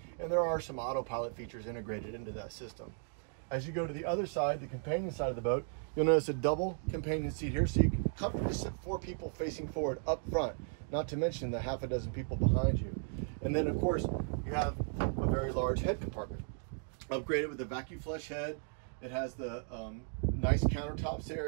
And there are some autopilot features integrated into that system. As you go to the other side, the companion side of the boat, you'll notice a double companion seat here, so you can comfortably sit 4 people facing forward up front, not to mention the half a dozen people behind you. And then of course, you have a very large head compartment, upgraded with a vacuum flush head. It has the nice countertops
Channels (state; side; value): silent; left; 54 dB below the other